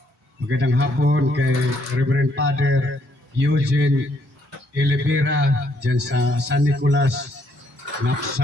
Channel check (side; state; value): both; normal; correlation 0.71